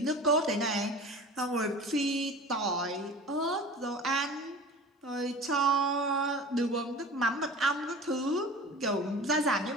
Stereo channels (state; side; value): normal; both; correlation 0.38